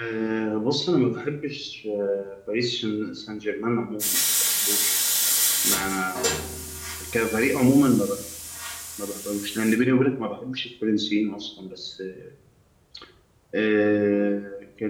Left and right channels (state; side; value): identical; both; correlation 1.00